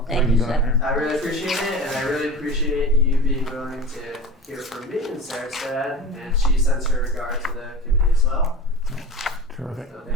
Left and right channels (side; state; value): both; normal; correlation 0.33